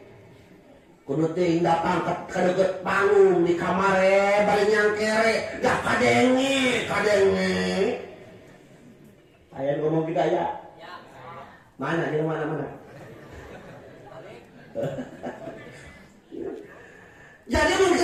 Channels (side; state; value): both; identical; correlation 1.00